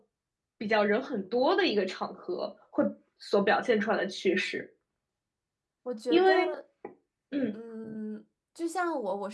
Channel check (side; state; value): both; identical; correlation 1.00